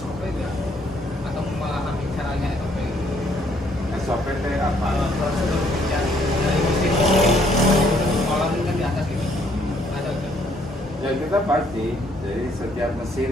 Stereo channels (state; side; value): normal; both; correlation 0.67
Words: nggak? Atau memahami caranya SOP? SOP teh apa? Prosedur kerja dari mesin kolam kan di atas ini ada nggak? Ya kita pasti. Jadi setiap mesin